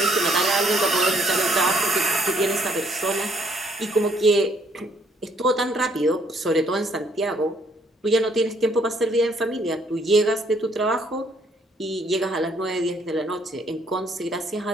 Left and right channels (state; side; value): normal; both; correlation 0.66